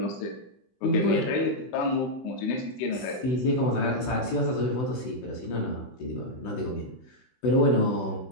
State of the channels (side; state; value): right; late; 16 ms